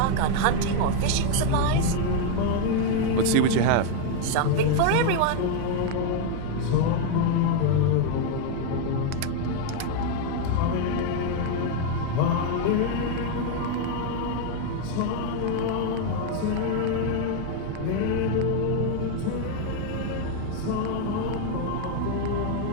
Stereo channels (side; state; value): both; different; correlation 0.01